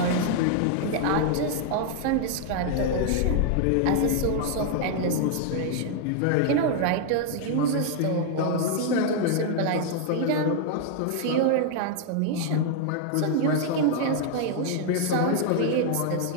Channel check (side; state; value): both; different; correlation 0.00